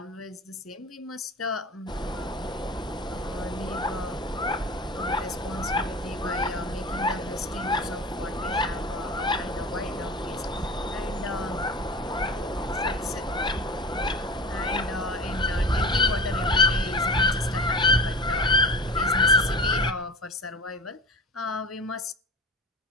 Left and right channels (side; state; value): both; normal; correlation 0.34